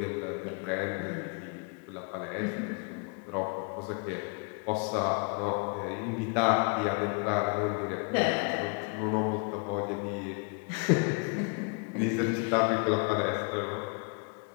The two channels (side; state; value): right; quieter; 36.0 dB